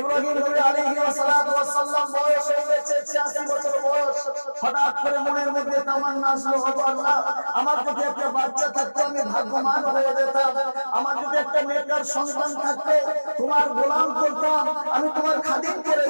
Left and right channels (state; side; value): inverted; both; correlation -1.00